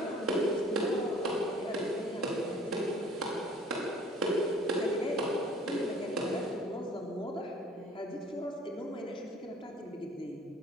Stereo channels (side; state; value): both; normal; correlation 0.51